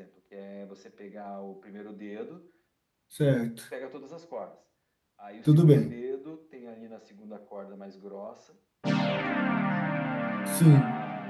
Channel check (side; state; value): both; identical; correlation 1.00